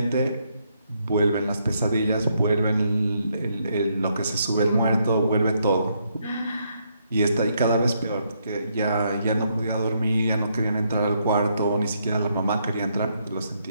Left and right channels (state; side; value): inverted; both; correlation -0.75